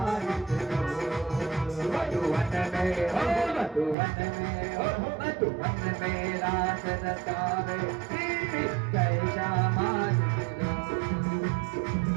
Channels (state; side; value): drops out; left; at 4.0 s